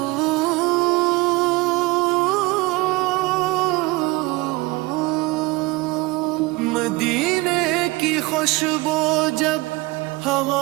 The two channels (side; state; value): left; quieter; 22.6 dB